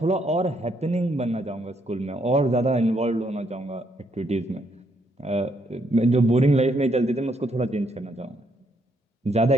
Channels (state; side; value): normal; both; correlation 0.73